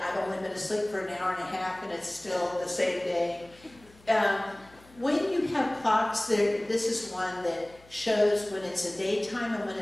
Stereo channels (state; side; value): noise; left; hum, 26 dB below the sound